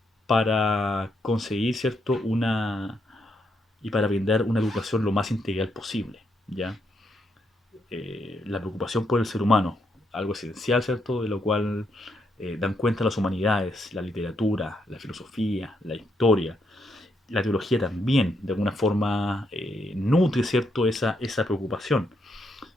para conseguir, ¿cierto?, y para brindar una educación lo más integral posible, ¿ya? La preocupación por el ser humano, algo esencial, ¿cierto? De lo cual dan cuenta las humanidades, la literatura, la filosofía, la historia, la teología también, de alguna forma nutre, ¿cierto?, esa preocupación.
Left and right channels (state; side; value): normal; both; correlation 0.78